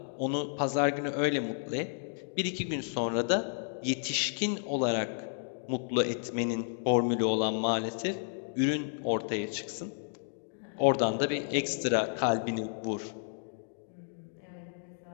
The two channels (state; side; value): silent; right; digital silence